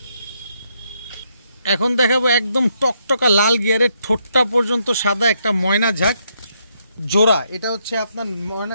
এখন দেখাবো একদম টকটকা লাল গিয়ারের, ঠোঁটটা পর্যন্ত সাদা একটা ময়না ঝাঁক জোড়া। এটা হচ্ছে আপনার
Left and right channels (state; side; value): inverted; both; correlation -0.76